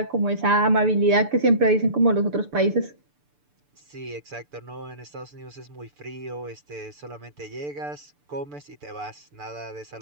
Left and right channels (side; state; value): left; late; 6.8 ms